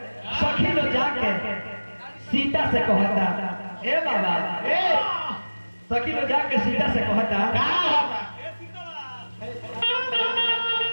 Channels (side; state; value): both; inverted; correlation -1.00